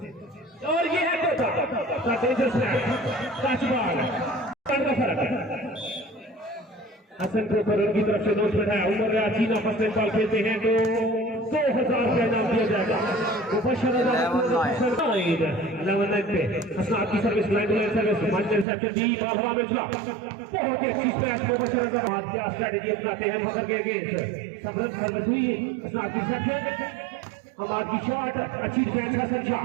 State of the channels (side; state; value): left; drops out; at 18.7 s